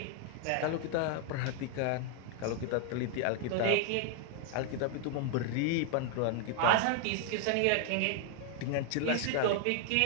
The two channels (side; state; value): both; different; correlation 0.00